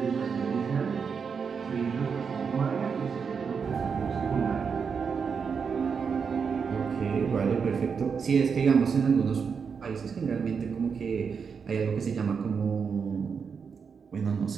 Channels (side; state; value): left; quieter; 6.0 dB